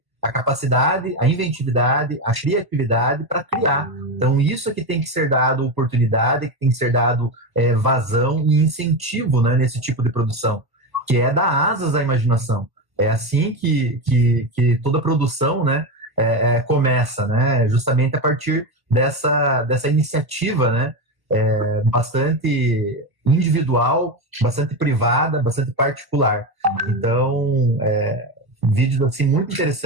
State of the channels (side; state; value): left; late; 1.1 ms